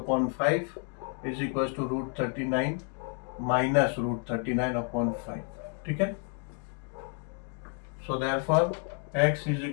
is equals to root 39 minus root 39/5. ठीक है. So therefore x is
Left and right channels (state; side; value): quieter; right; 37.6 dB